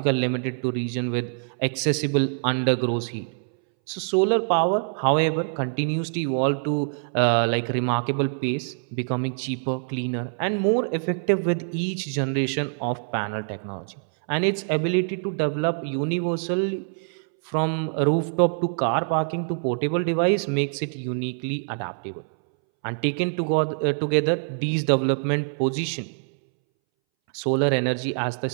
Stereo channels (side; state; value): left; silent; 62 dB below the other